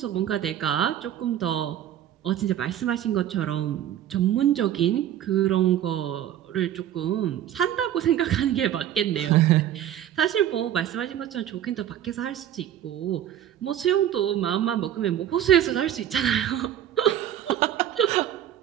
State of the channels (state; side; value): quieter; left; 11.0 dB